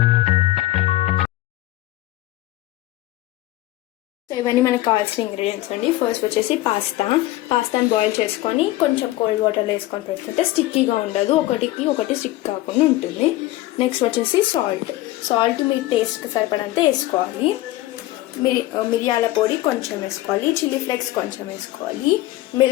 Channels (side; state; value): right; quieter; 16.6 dB